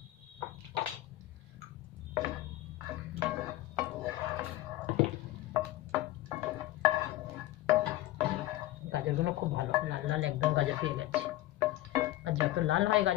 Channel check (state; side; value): quieter; right; 16.1 dB